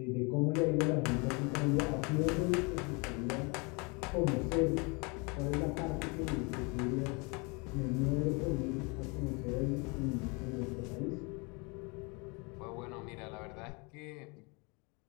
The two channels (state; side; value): quieter; right; 30.3 dB